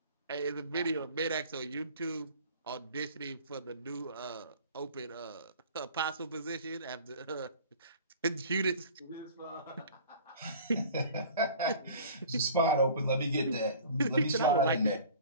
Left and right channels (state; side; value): inverted; both; correlation -0.45